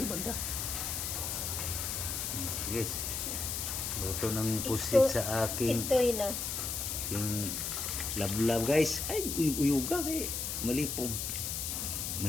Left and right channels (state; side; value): noise; left; hiss, 2 dB below the sound